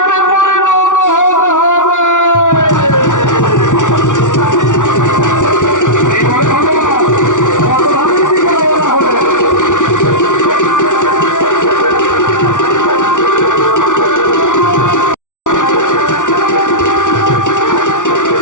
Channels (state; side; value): late; right; 0.87 ms